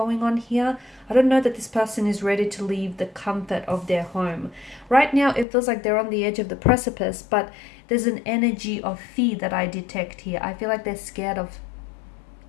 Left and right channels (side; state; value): right; drops out; at 5.5 s